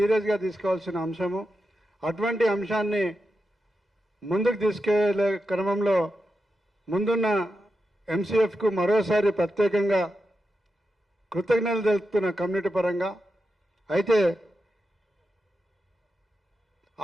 తీసుకోవాల్సిన అంశము. అటువంటి అంశాన్ని ముందుకు తీసుకెళ్లే క్రమంలో ముందున్న ఎంసీఎఫ్కు మరోసారి ప్రత్యేకంగా కృతజ్ఞతలు తెలుపుతున్న కమ్యూనిటీ పరంగా. అయితే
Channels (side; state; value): both; normal; correlation 0.88